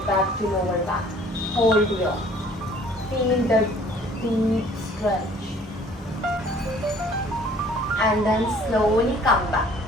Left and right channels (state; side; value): normal; both; correlation 0.54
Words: back to lower back. Hold here. Feel the deep stretch. And then slowly come back.